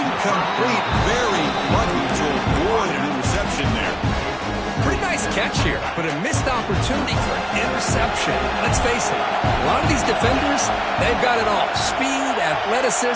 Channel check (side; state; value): both; identical; correlation 1.00